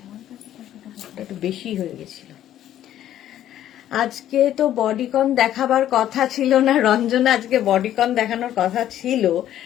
একটু বেশি হয়ে গেছিল। আজকে তো বডিকন দেখাবার কথা ছিল না রঞ্জনা, আজকে বডিকন দেখানোর কথা ছিল,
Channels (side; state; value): right; quieter; 11.9 dB